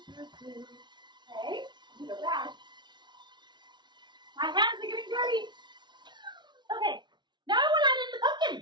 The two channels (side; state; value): left; late; 0.21 ms